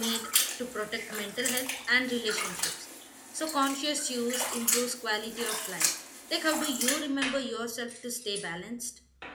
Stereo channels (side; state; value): both; identical; correlation 1.00